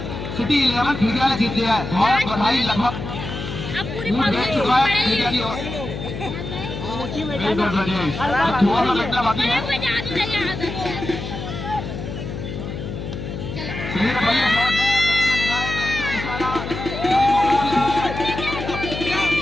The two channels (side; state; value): left; noise; hum, 7 dB below the sound